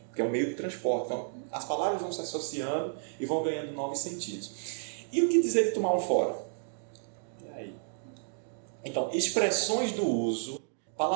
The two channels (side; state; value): left; silent; digital silence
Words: que é o meio de transporte. Então, as palavras vão se associando e vão ganhando novos sentidos. E o que dizer de tomar um fora? E aí? Então, expressões do uso